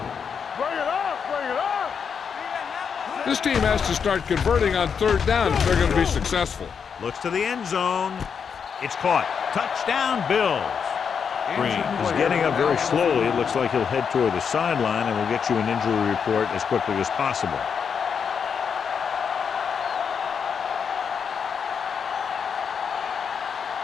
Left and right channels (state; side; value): quieter; right; 6.7 dB